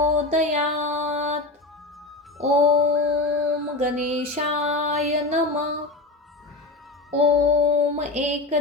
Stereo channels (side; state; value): right; quieter; 3.1 dB